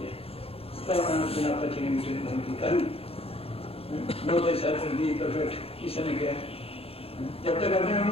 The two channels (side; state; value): right; late; 0.28 ms